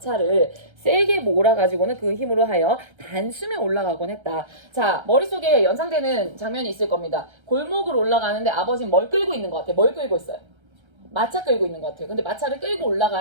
세게 몰아가지고는 그 힘으로 하여 단숨에 올라가곤 했다. 자, 머릿속에 연상되는 장면이 있을 겁니다. 골목을 올라가는데 아버지는 뭘 끌고 있는 것 같아요. 뭘 끌고 있어요? 마차 끌고 있는 것 같아요. 근데 마차를 끌고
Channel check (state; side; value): late; left; 1.3 ms